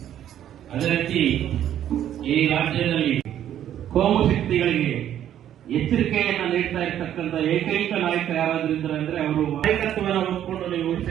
ಅದೇ ರೀತಿ ಈ ರಾಜ್ಯದಲ್ಲಿ ಕೋಮು ಶಕ್ತಿಗಳಿಗೆ ಎಚ್ಚರಿಕೆಯನ್ನ ನೀಡ್ತಾ ಇರ್ತಕ್ಕಂಥ ಏಕೈಕ ನಾಯಕ ಯಾರಾದ್ರೂ ಇದ್ದಾರೆ ಅಂದ್ರೆ ಅವರು ನಾಯಕತ್ವವನ್ನು ಹೊಂದ್ಕೊಂಡು ನೀವು ಉಳಿದ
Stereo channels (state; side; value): quieter; left; 10.9 dB